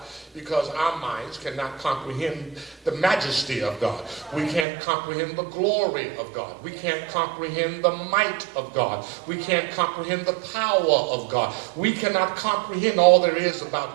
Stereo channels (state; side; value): drops out; left; at 4.7 s